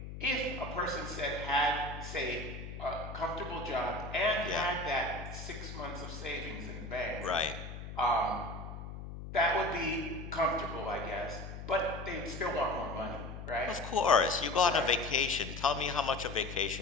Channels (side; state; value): left; noise; hum, 9 dB below the sound